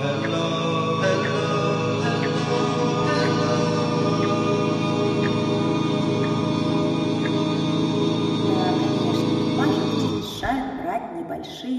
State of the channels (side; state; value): both; identical; correlation 1.00